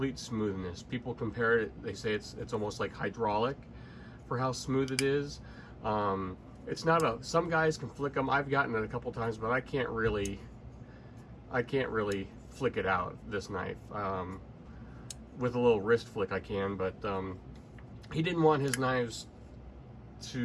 smoothness. People compare it, they say it's almost like hydraulic for how smooth it is. It's not some guys can flick them. I've gotten it a couple times, but I can't really flick it out, this knife. With a little wrist flick I can, but he didn't want his knives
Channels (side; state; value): both; identical; correlation 1.00